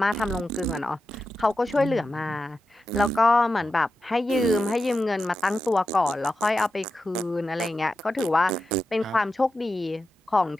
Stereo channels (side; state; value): both; normal; correlation 0.90